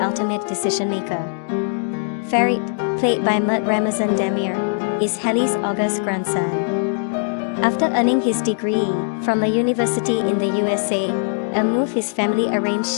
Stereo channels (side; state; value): right; silent; digital silence